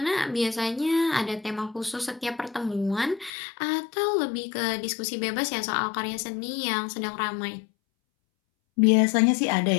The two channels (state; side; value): drops out; right; at 3.3 s